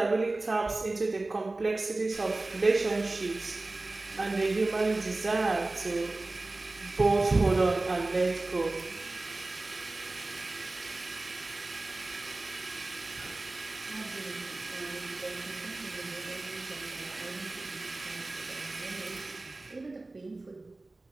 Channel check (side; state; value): left; quieter; 3.1 dB